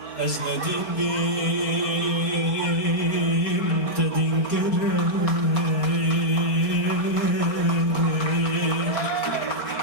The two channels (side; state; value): right; late; 4.9 ms